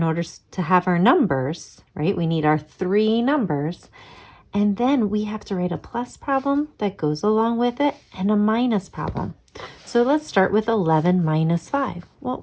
order to have our numbers, right? We need our three numbers. And then we have to write a plus problem that goes along with it and a minus problem. So let's start with 11 minus 5.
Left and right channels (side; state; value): both; identical; correlation 1.00